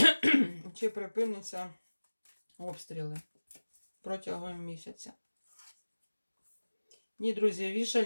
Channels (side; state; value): both; inverted; correlation -1.00